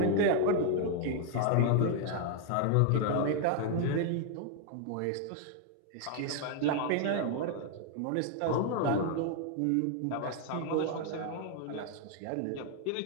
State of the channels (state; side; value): different; both; correlation 0.00